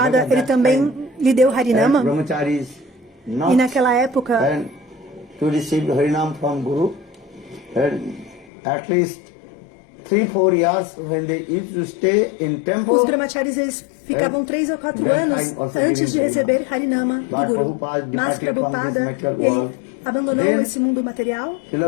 ele também lhe deu Harinama. brahmacharis not E naquela época, to receive Harinam from Guru. At least 3-4 years when they used to stay in temple. os brahmacharis eles ficavam 3 ou 4 anos antes de receber Harinama do Guru. Mas Prabhupada, ele abandonou esse mundo material.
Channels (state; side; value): drops out; right; at 8.5 s